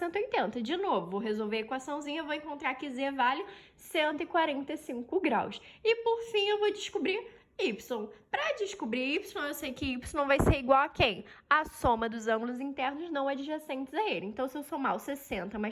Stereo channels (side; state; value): both; identical; correlation 1.00